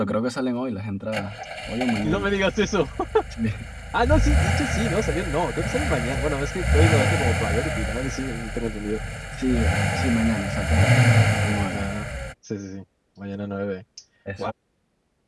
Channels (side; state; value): both; identical; correlation 1.00